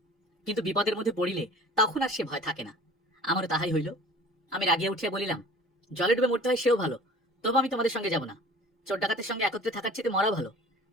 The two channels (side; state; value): both; normal; correlation 0.46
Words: কিন্তু বিপদের মধ্যে পড়িলে তখন আর সে ভয় থাকে না। আমারও তাহাই হইল। আমি রাগিয়া উঠিয়া বলিলাম, জলে ডুবে মরতে হয় সেও ভালো, তবু আমি তোমাদের সঙ্গে যাব না। চোর ডাকাতের সঙ্গে একত্রে থাকার চেয়ে মরা ভালো।